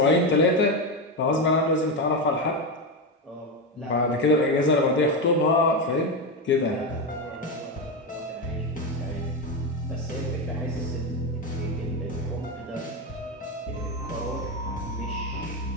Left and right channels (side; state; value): both; normal; correlation 0.12